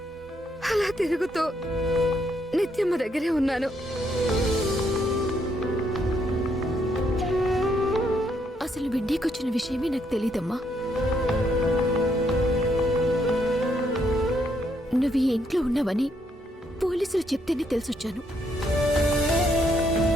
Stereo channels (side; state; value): both; normal; correlation 0.74